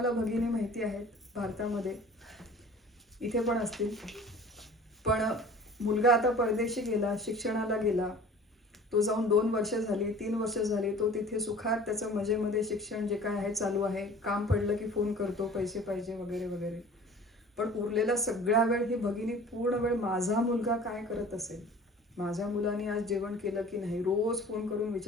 भगिनी माहिती आहेत भारतामध्ये, इथे पण असतील, पण मुलगा आता परदेशी गेला, शिक्षणाला गेला, तो जाऊन 2 वर्ष झाली, 3 वर्ष झाली, तो तिथे सुखात त्याचं मजेमध्ये शिक्षण जे काय आहे चालू आहे, काम पडलं की फोन करतो, पैसे पाहिजे वगैरे वगैरे. पण उरलेला सगळा वेळ ही भगिनी पूर्ण वेळ माझा मुलगा काय करत असेल, माझ्या मुलाने आज जेवण केलं की नाही, रोज फोन करून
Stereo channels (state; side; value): normal; both; correlation 0.45